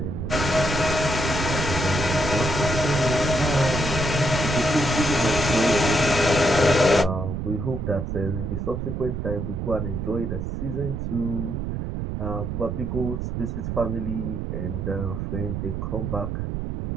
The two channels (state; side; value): noise; right; rumble, 3 dB below the sound